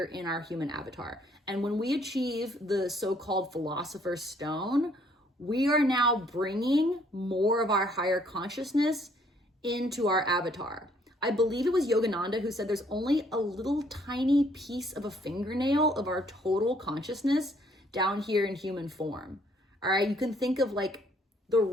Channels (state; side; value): normal; both; correlation 0.64